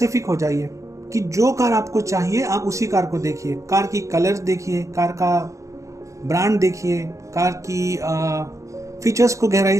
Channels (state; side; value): late; left; 0.15 ms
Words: हो जाइए कि जो कार आपको चाहिए आप उसी कार को देखिए। कार की कलर्स देखिए, कार का ब्रांड देखिए, कार की फीचर्स को गहराई